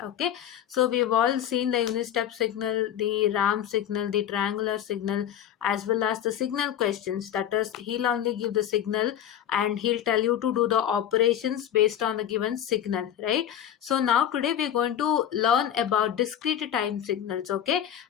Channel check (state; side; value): quieter; right; 10.2 dB